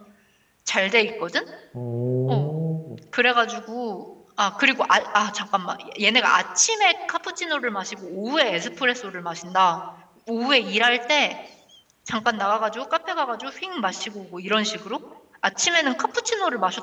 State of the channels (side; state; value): both; identical; correlation 1.00